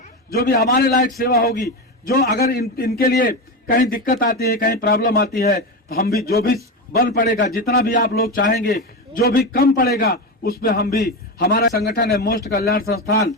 जो भी हमारे लायक सेवा होगी, जो अगर इनके लिए कहीं दिक्कत आती है, कहीं प्रॉब्लम आती है, तो हम भी जो भी बल पड़ेगा, जितना भी आप लोग चाहेंगे, जो भी कम पड़ेगा, उस पर हम भी, हमारा संगठन है मोस्ट कल्याण संस्थान,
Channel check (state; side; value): normal; both; correlation 0.17